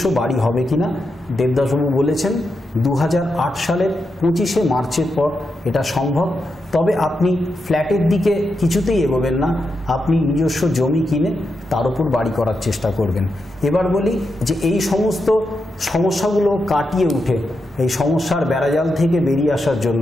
বাড়ি হবে কিনা। দেবদাসবাবু বলেছেন 2008 সালের 25শে মার্চের পর এটা সম্ভব, তবে আপনি ফ্ল্যাটের দিকে কিছুতেই এগোবেন না, আপনি নিজস্ব জমি কিনে তার উপর বাড়ি করার চেষ্টা করবেন। এবার বলি যে এই সমস্ত সমস্যাগুলো কাটিয়ে উঠে এই সমস্যার বেড়াজাল থেকে বেরিয়ে আসার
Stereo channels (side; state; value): both; normal; correlation 0.86